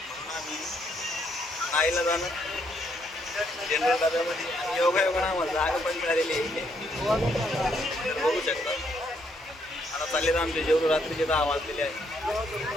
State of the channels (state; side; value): normal; both; correlation 0.72